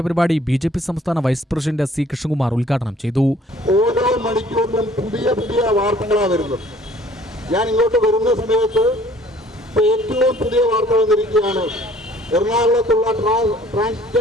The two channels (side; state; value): both; normal; correlation 0.55